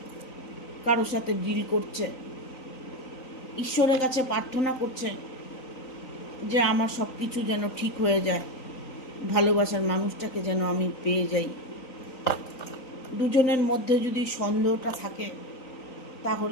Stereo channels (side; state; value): right; late; 3.9 ms